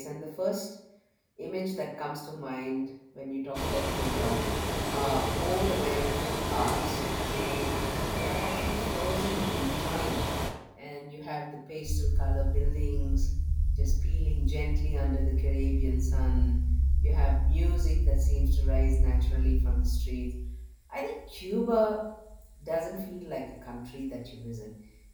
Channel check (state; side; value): identical; both; correlation 1.00